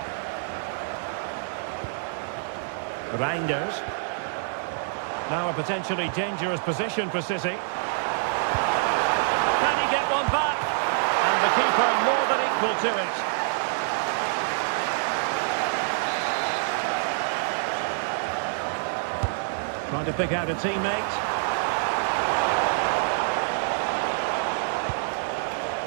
Reinders. Now a potentially dangerous position for City. Can he get one back? And the keeper more than equal to it. Trying to pick out a teammate.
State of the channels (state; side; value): silent; left; digital silence